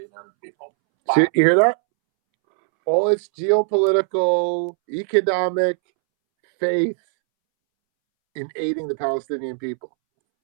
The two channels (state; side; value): silent; left; 66 dB below the other